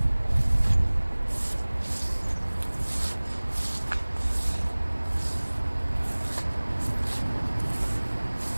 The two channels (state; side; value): inverted; both; correlation -1.00